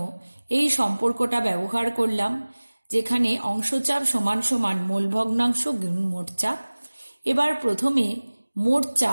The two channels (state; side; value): inverted; both; correlation -1.00